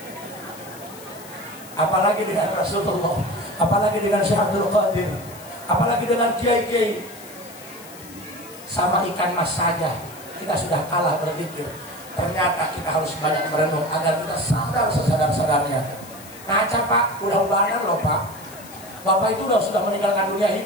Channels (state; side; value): noise; left; hiss, 18 dB below the sound